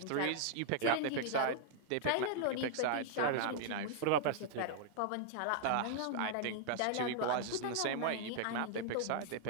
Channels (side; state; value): both; different; correlation -0.01